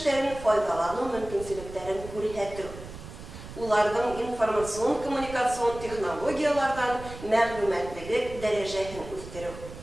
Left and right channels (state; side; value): noise; right; rumble, 13 dB below the sound